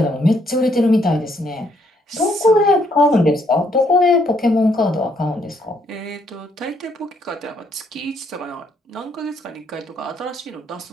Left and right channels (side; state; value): both; normal; correlation 0.71